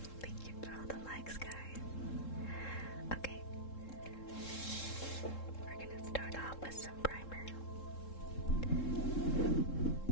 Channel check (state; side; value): late; right; 3.7 ms